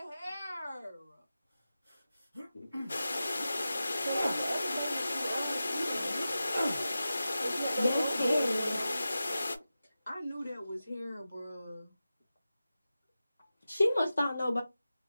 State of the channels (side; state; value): both; inverted; correlation -0.93